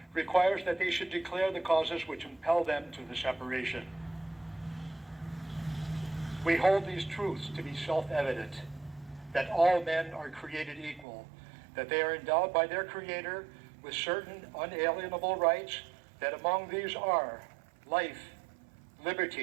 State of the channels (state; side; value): drops out; left; at 11.1 s